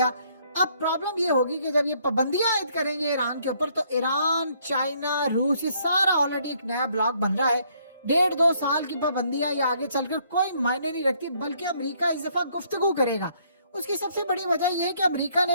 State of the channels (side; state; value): both; inverted; correlation -0.66